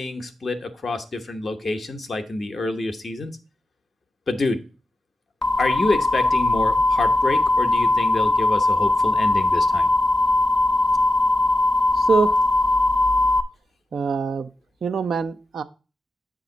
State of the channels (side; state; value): both; normal; correlation 0.89